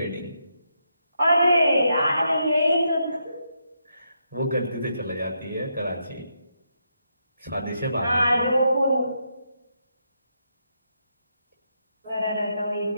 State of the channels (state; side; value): inverted; both; correlation -0.81